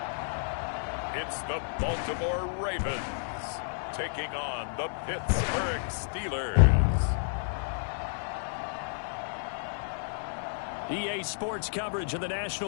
It's the Baltimore Ravens taking on the Pittsburgh Steelers. EA Sports coverage of the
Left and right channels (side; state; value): right; silent; 57 dB below the other